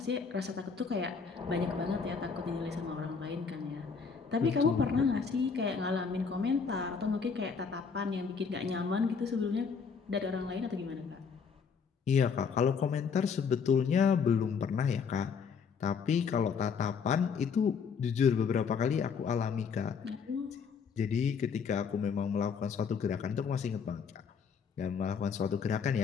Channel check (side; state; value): right; quieter; 5.9 dB